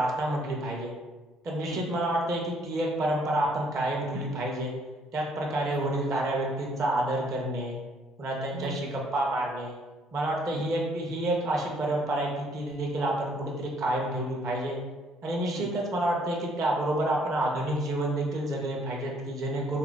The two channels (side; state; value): both; normal; correlation 0.65